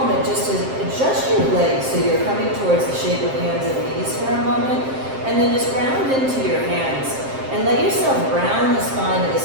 just to adjust your legs so you're coming towards the shape of hands and knees for a moment. And then just ground into your hands. And let yourself round the spine of the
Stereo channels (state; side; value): late; left; 7.6 ms